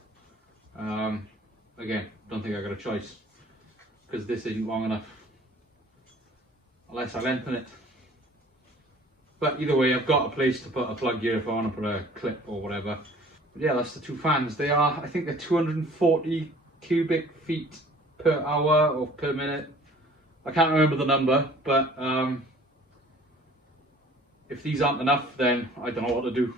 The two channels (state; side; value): normal; both; correlation 0.51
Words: again, don't think I got a choice because this isn't long enough unless I lengthen it. But either way, I've got a place to put a plug here if I want to put a clip or whatever. But yeah, that's the two fans. They are, I think they're 240 cubic feet per hour or per minute. I can't remember the number, but if these aren't enough, then I don't know what to do